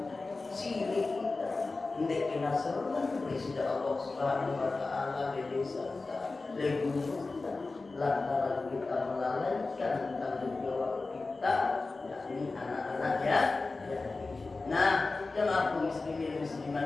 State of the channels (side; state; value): right; quieter; 3.6 dB